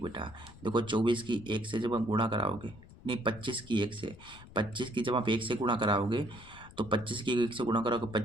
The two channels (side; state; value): left; noise; rumble, 19 dB below the sound